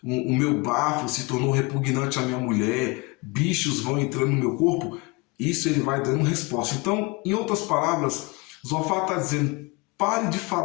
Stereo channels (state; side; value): quieter; right; 26.4 dB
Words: o meu bafo se tornou repugnante à minha mulher, bichos vão entrando no meu corpo, isso ele vai dando resposta. Então, em outras palavras, Zofar está dizendo, pare de